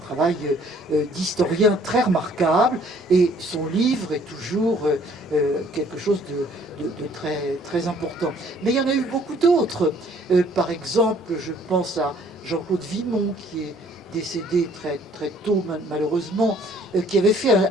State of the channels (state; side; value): normal; both; correlation 0.59